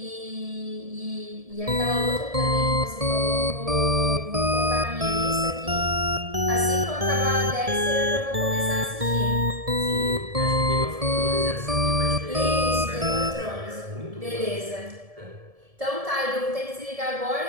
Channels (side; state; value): left; late; 1.7 ms